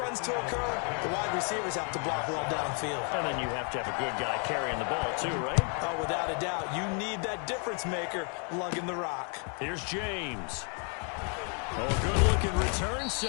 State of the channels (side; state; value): right; quieter; 39.4 dB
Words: to occur, the wide receivers have to block well downfield. And then you have to have a good guy carrying the ball too, right? Oh, without a doubt, you need that difference maker lugging the rock. Here's James. Oh, good-looking return